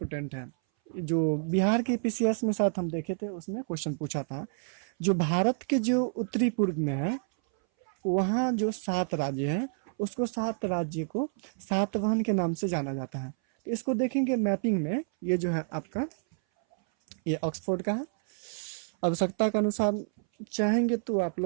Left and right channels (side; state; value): left; silent; 58 dB below the other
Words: है, जो बिहार के पीसीएस में साथ हम देखे थे, उसमें क्वेश्चन पूछा था, जो भारत के जो उत्तरी पूर्व में है वहाँ जो 7 राज्य हैं, उसको 7 राज्य को सातवाहन के नाम से जाना जाता है। तो इसको देखेंगे मैपिंग में, ये जो है आपका ये ऑक्सफोर्ड का है। आवश्यकता के अनुसार चाहेंगे तो आप